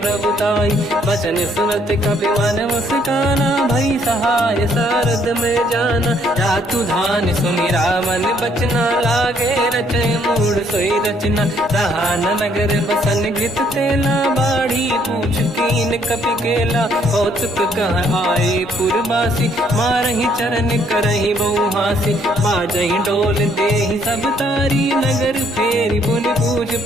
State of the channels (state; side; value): normal; both; correlation 0.67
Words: बचन सुनत कपि मन मुस्काना, भई सहाय सारद में जाना। जातु धान सुनि रामन बचना, लागे रचे मूड सोई रचना। रहा न नगर बसन गृत तेला, बाढ़ी पूछ कीन कपि केला। कौतुक कह आए पुरवासी, मारहि चरण करहि बहु हासी। बाजहि डोल देहि सब तारी, नगर फेरी पुनि पूज